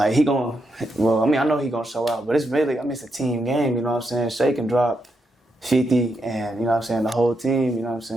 I know he gonna show out, but it's really, it's a team game, you know what I'm saying? Shea can drop 50 and, you know what I'm saying, the whole team, you know what I'm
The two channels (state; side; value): normal; both; correlation 0.82